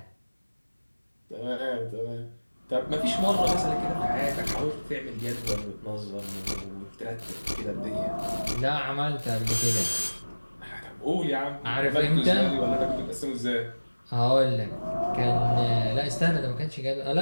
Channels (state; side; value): inverted; both; correlation -1.00